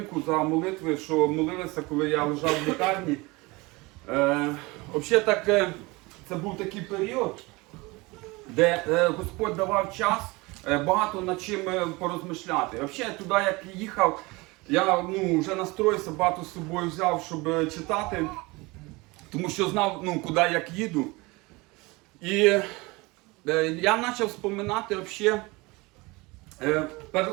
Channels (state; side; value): quieter; left; 23.9 dB